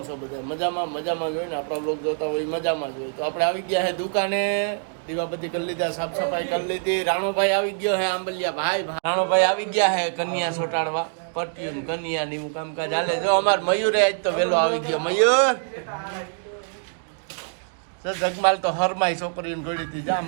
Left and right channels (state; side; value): silent; left; digital silence